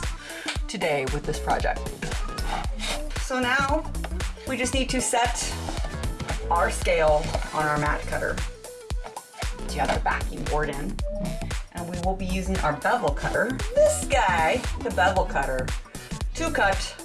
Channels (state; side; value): identical; both; correlation 1.00